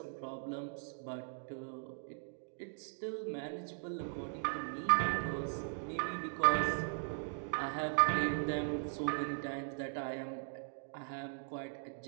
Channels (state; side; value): silent; left; digital silence